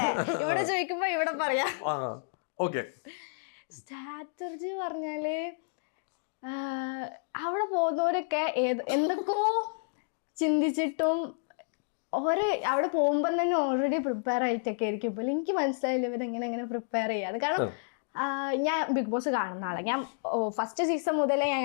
ചോദിക്കുമ്പോ ഇവിടെ പറയാം. ഓക്കെ. സ്ട്രാറ്റജി പറഞ്ഞാല് അവിടെ പോകുന്നവരൊക്കെ എന്തൊക്കെയോ ചിന്തിച്ചിട്ടും അവിടെ പോകുമ്പോൾ തന്നെ ഓൾറെഡി പ്രിപ്പയർ ആയിട്ടൊക്കെ ആയിരിക്കും. ഇപ്പോൾ എനിക്ക് മനസ്സിലായില്ല ഇവരെങ്ങനെ പ്രിപ്പയർ ചെയ്യാതെ. കാരണം ഞാൻ ബിഗ് ബോസ് കാണുന്ന ആളെ, ഞാൻ ഫസ്റ്റ് സീസൺ മുതലേ ഞാൻ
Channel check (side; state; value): right; silent; digital silence